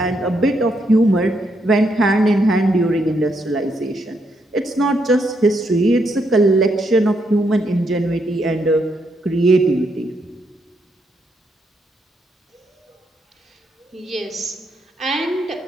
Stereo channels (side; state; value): both; normal; correlation 0.78